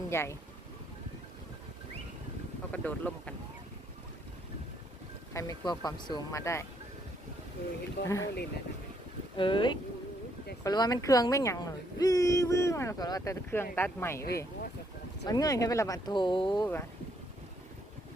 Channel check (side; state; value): both; normal; correlation 0.71